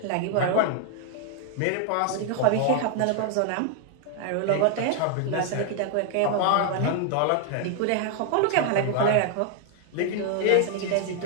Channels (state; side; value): different; both; correlation 0.00